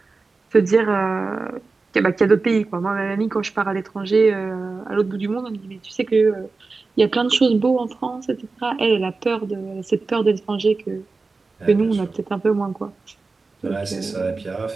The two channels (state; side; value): quieter; left; 3.9 dB